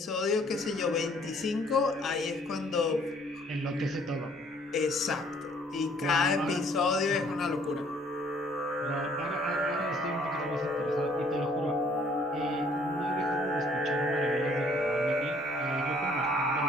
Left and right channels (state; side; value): normal; both; correlation 0.60